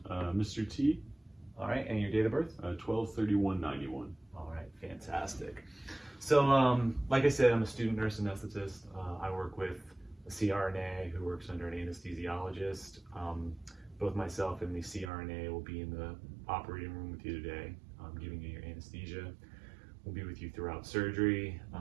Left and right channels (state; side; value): drops out; left; at 15.1 s